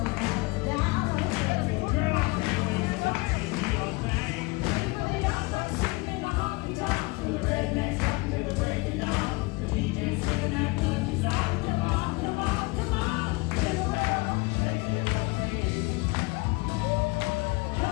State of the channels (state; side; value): quieter; right; 24.9 dB